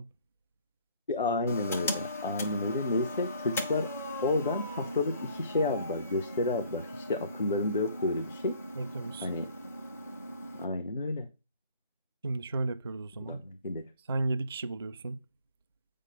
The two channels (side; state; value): both; inverted; correlation -0.55